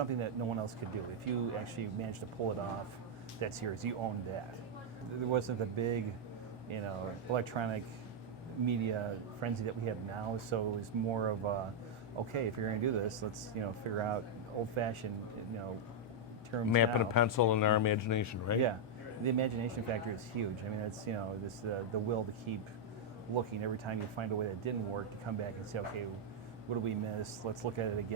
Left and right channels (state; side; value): normal; both; correlation -0.03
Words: that no one else could do. If you actually managed to pull it off, that's yours. You owned that. There wasn't the big, electronic media frenzy that we have now. So it was more of a, okay, if you're going to do this, let's figure out old-fashioned terms. Map and now. a pencil and our imagination, right? Yeah, the imagination factor is huge. I mean, it's this the will to keep looking every time you find a way that didn't work, to come back and say, okay, what did we miss? Let's look at it